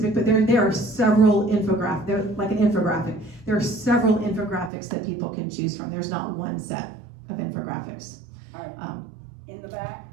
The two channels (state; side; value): drops out; left; at 4.7 s